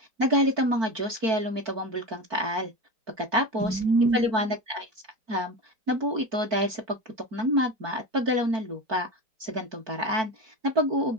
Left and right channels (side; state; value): left; late; 4.5 ms